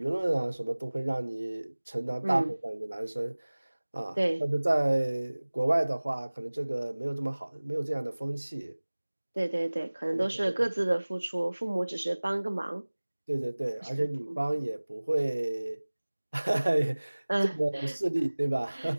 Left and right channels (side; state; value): both; inverted; correlation -1.00